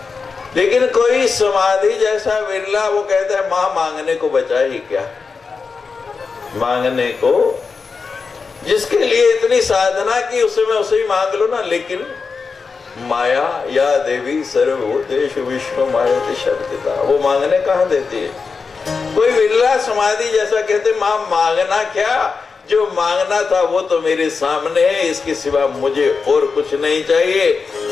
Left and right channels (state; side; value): quieter; right; 4.9 dB